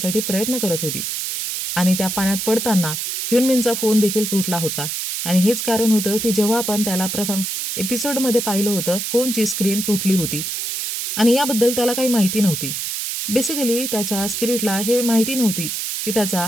प्रयत्न करत होती. आणि त्या पाण्यात पडताना ह्युनमिनचा फोन देखील तुटला होता आणि हेच कारण होतं की जेव्हा आपण त्याला प्रथम एपिसोडमध्ये पाहिलं होतं फोनची स्क्रीन तुटली होती आणि याबद्दल त्याला काही माहिती नव्हती. बेसिकली त्याच्या स्पिरिटला हे माहिती नव्हती की त्याचा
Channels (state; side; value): noise; right; hiss, 3 dB below the sound